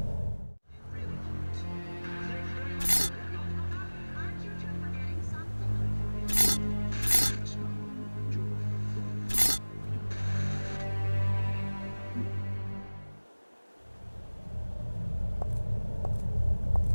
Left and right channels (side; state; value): both; inverted; correlation -1.00